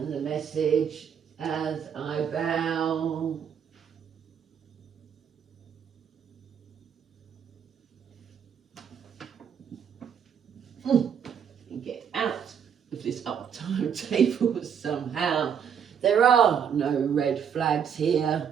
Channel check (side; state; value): left; quieter; 7.8 dB